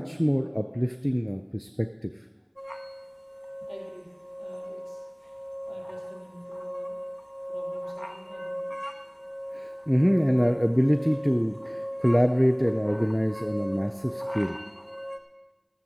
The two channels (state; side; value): identical; both; correlation 1.00